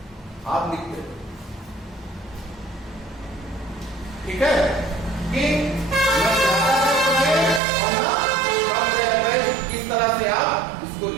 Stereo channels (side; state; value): left; drops out; at 7.6 s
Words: आप लिखते हैं, ठीक है, कि इस तरह से आप इसको